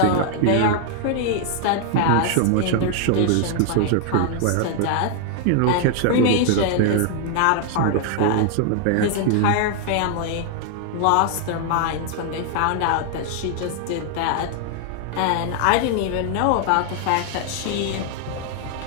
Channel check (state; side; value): different; both; correlation 0.00